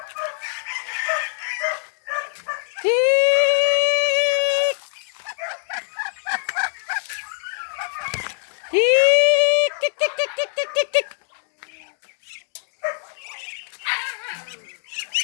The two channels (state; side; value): silent; right; digital silence